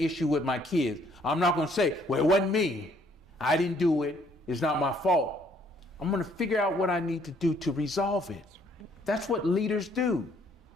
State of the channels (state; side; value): normal; both; correlation 0.64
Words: with my kids, I'm not going to say, well, it wasn't me. I didn't do it. It's not my fault. I'm going to figure out what I need to do to resolve it. That's what leaders do.